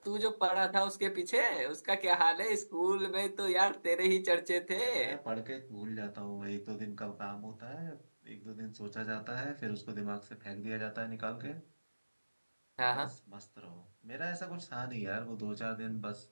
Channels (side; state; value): both; inverted; correlation -1.00